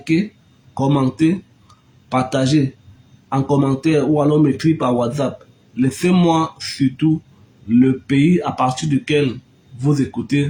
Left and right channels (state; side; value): identical; both; correlation 1.00